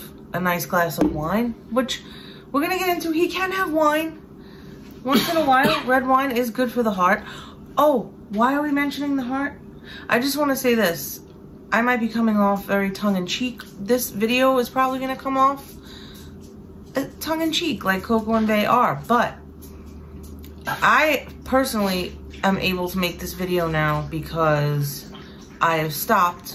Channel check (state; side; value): identical; both; correlation 1.00